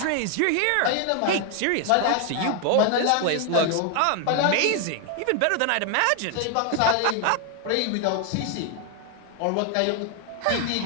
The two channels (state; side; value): different; both; correlation 0.00